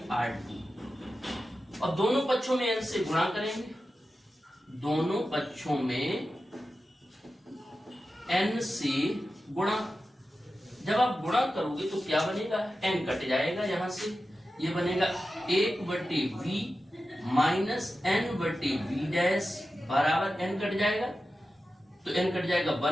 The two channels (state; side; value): normal; both; correlation 0.93